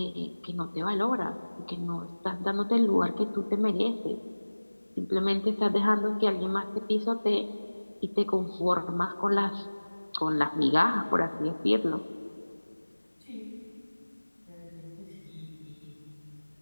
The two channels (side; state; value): both; inverted; correlation -1.00